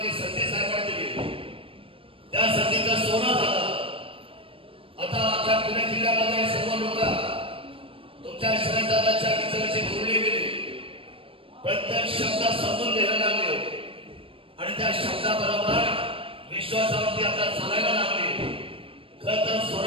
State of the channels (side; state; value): left; late; 0.26 ms